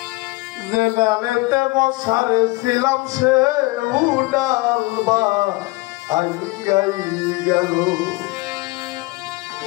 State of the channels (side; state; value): right; quieter; 22.3 dB